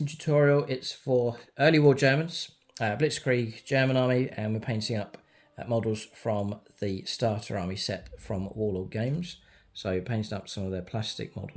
tutorial. It's for early war Germans, Blitzkrieg German army, and we're painting up models from the starter army set from Warlord games. So painting up some of their plastic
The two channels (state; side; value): identical; both; correlation 1.00